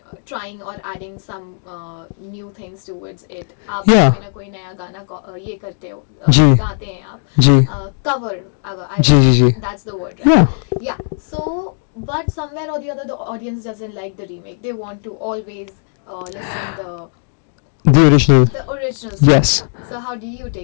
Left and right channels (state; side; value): silent; right; 61 dB below the other